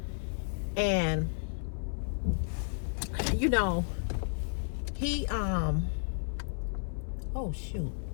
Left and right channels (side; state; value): right; silent; 56 dB below the other